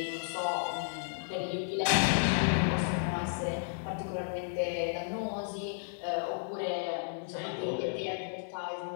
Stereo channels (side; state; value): right; silent; digital silence